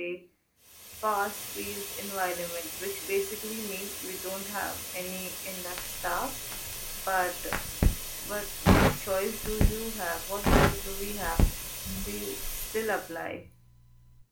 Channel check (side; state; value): both; identical; correlation 1.00